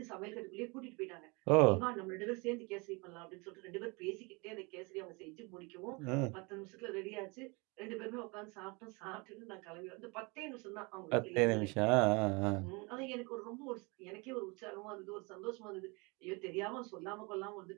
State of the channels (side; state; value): left; quieter; 28.3 dB